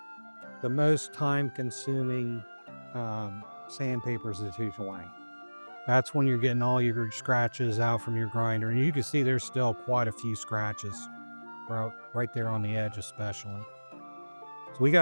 the most time-consuming sandpaper is the 220. That's when you're getting all your scratches out from your grinder. And you can see there's still quite a few scratches right there on the edge especially. So we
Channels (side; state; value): both; inverted; correlation -1.00